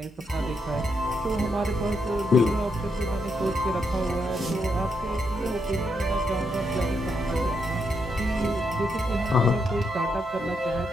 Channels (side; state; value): both; normal; correlation 0.80